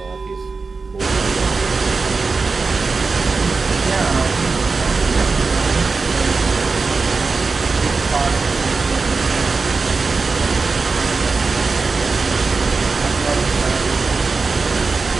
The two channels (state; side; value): quieter; left; 4.3 dB